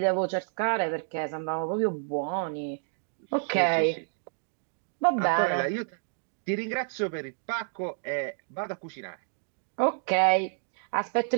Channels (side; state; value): left; silent; digital silence